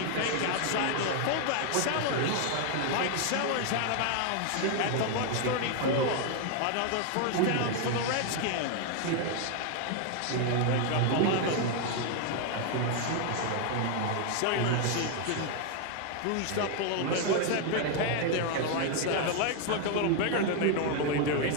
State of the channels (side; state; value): both; different; correlation 0.00